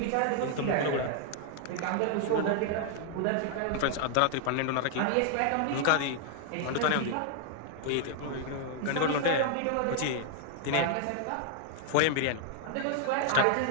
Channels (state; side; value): different; both; correlation 0.00